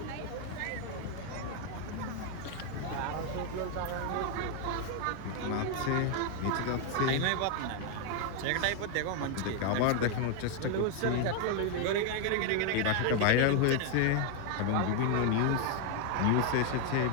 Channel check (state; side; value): different; both; correlation 0.01